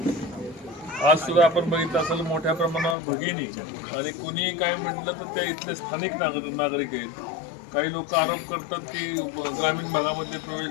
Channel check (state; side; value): drops out; right; at 3.0 s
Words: आज सुद्धा आपण बघितलं असेल मोठ्या प्रमाणावर भगिनी आणि कुणीही काय म्हटलं तर त्या इथले स्थानिक नागरिक आहेत। काही लोक आरोप करतात की ग्रामीण भागामध्ये प्रवेश